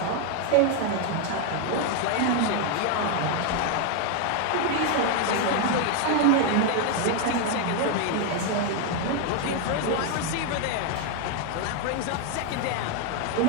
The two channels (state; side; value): different; both; correlation 0.01